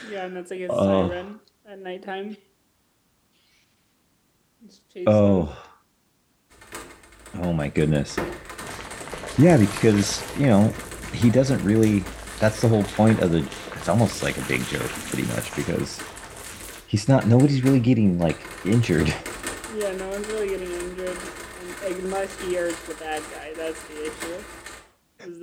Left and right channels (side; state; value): both; identical; correlation 1.00